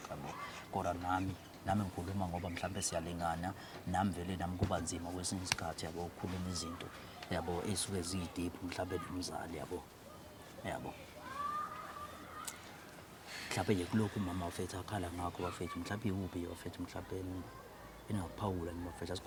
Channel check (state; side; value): identical; both; correlation 1.00